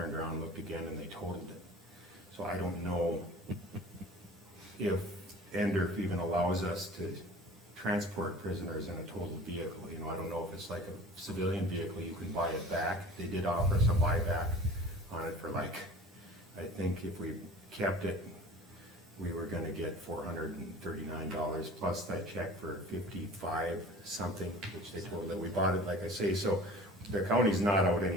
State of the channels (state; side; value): normal; both; correlation 0.42